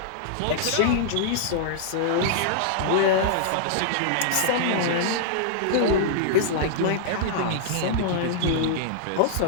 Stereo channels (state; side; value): different; both; correlation -0.01